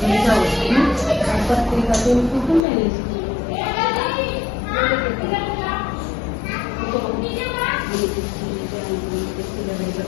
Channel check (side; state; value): right; drops out; at 2.7 s